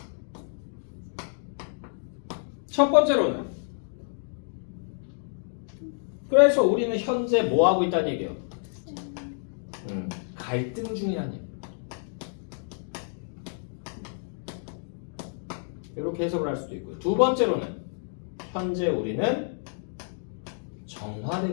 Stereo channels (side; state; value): right; silent; 59 dB below the other